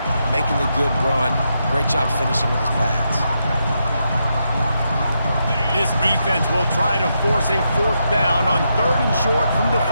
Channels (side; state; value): both; inverted; correlation -0.83